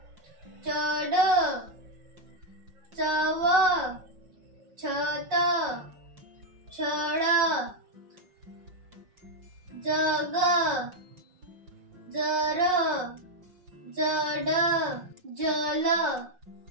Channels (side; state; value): left; late; 5.5 ms